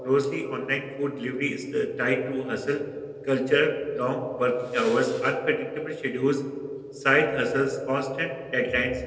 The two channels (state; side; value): identical; both; correlation 1.00